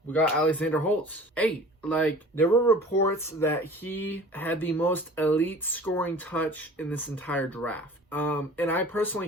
We got Alexander Holtz, 8. There were reports that he had the most elite scoring touch in this entire draft. And I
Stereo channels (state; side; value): normal; both; correlation 0.44